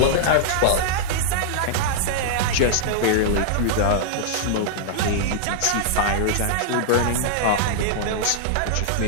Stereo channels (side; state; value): both; different; correlation -0.02